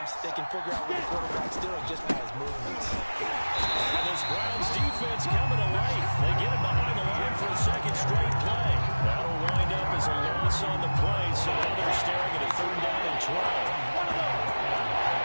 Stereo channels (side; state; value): both; inverted; correlation -1.00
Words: they can figure out what the quarterback's doing just by his movements. And this Browns defense coming to life. They get it behind the line for a 2nd straight play. That'll wind up as a loss on the play, so now they're staring at a 3rd down and 12.